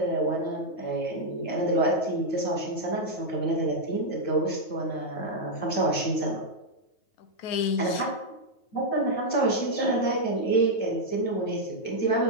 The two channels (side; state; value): right; late; 9.3 ms